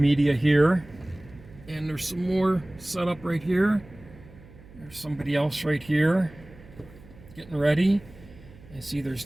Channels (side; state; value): right; noise; hum, 21 dB below the sound